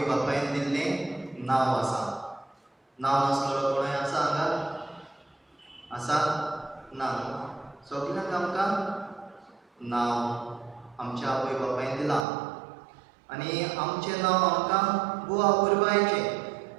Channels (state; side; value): drops out; left; at 12.2 s